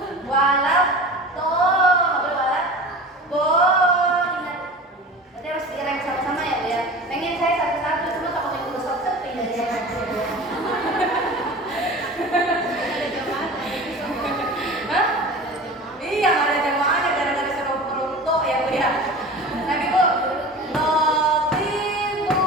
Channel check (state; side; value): normal; both; correlation 0.36